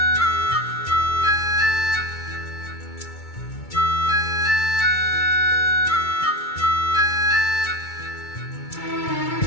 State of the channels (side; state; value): right; late; 2.2 ms